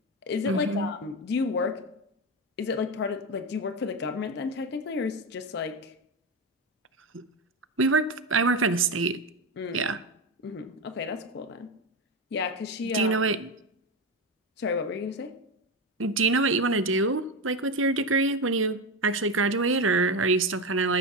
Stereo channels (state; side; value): normal; both; correlation 0.15